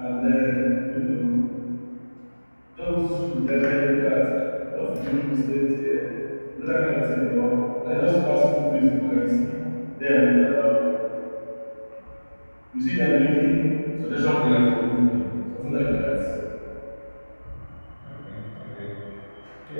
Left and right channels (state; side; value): inverted; both; correlation -1.00